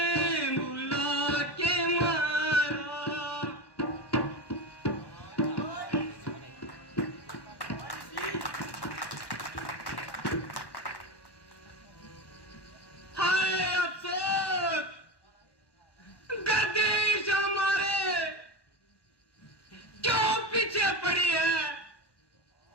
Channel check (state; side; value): late; right; 1.1 ms